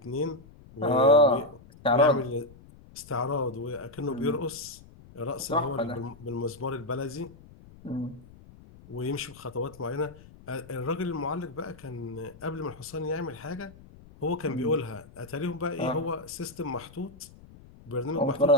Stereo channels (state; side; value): noise; left; rumble, 21 dB below the sound